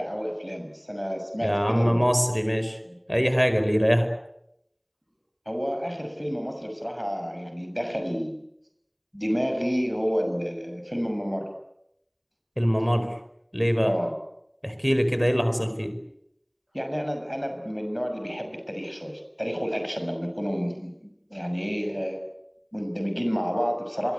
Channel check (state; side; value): identical; both; correlation 1.00